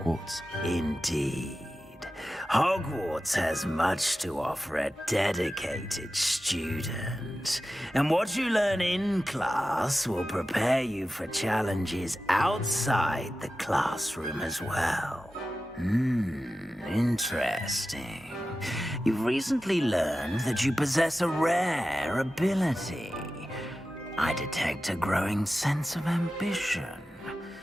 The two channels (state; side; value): normal; both; correlation 0.94